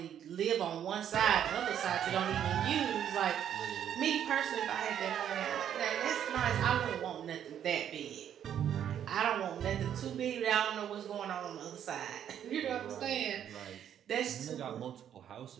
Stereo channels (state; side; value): quieter; left; 9.7 dB